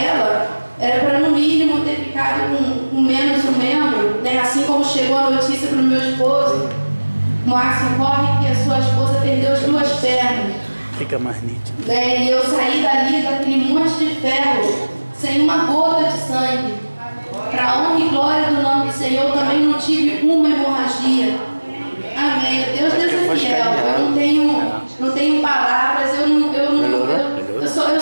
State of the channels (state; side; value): inverted; both; correlation -1.00